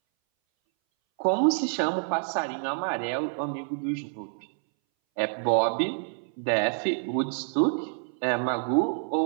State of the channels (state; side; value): silent; left; 60 dB below the other